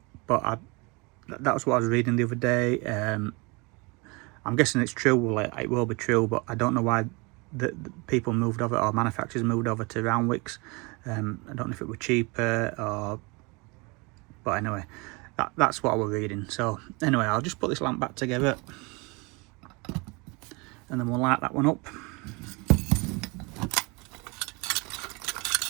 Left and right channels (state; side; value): quieter; left; 28.0 dB